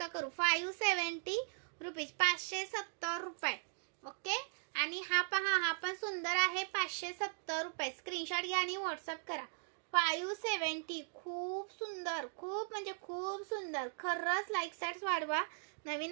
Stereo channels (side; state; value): left; silent; digital silence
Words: करू. 570 रुपीज, 570 रुपये. ओके, आणि हा पहा, हा पण सुंदर आहे, 570 रुपये. स्क्रीनशॉट घ्या आणि व्हॉट्सअप करा. 570, खूप सुंदर, खूप म्हणजे खूप सुंदर. खरंच लाईक सर्च वाढवा.